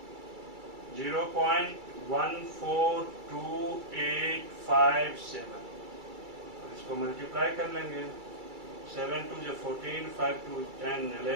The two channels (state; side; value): late; left; 2.3 ms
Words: 0.142857, और इसको मल्टीप्लाई कर लेंगे। 7 2 जो 14, 5 2 10